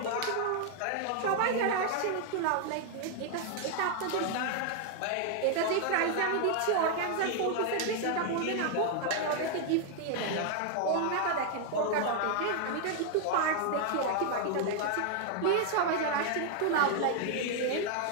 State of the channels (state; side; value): different; both; correlation 0.00